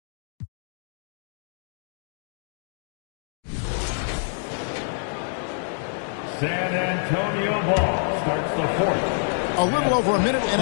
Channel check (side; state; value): right; silent; digital silence